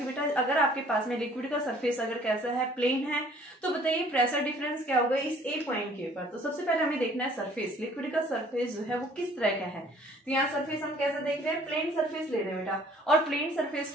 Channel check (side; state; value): both; normal; correlation 0.56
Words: बेटा अगर आपके पास में लिक्विड का सरफेस अगर कैसा है, प्लेन है, तो बताइए प्रेशर डिफरेंस क्या होगा इस ए पॉइंट के ऊपर। तो सबसे पहले हमें देखना है सरफेस, लिक्विड का सरफेस जो है वो किस तरह का है। तो यहाँ सरफेस हम कैसा देख रहे हैं, प्लेन सरफेस ले रहे हैं बेटा, और प्लेन सरफेस